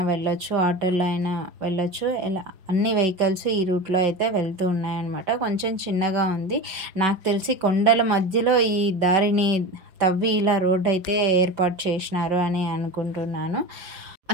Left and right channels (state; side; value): late; left; 5.3 ms